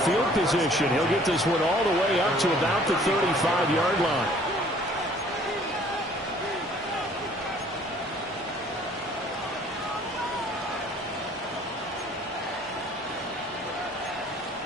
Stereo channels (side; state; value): both; normal; correlation 0.56